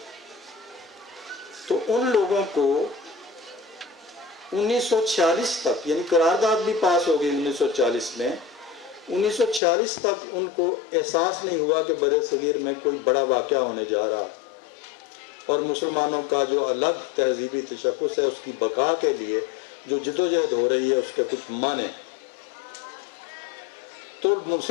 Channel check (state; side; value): drops out; right; at 9.6 s